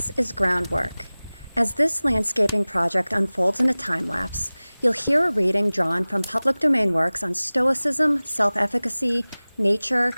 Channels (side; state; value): both; inverted; correlation -0.99